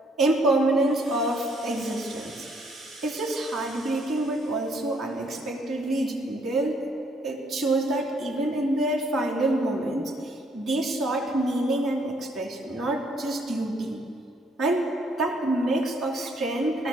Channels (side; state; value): both; normal; correlation 0.67